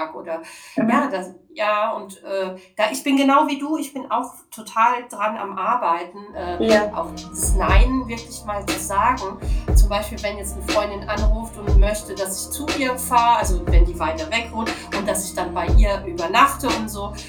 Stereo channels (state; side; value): identical; both; correlation 1.00